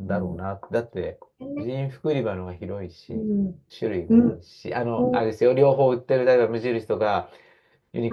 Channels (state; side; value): identical; both; correlation 1.00